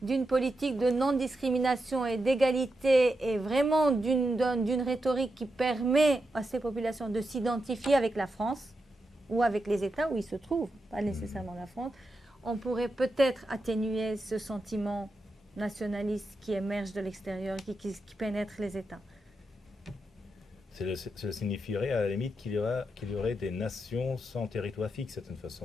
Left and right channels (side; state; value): both; normal; correlation 0.87